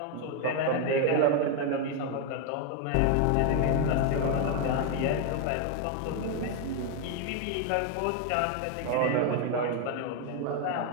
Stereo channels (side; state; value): both; different; correlation 0.01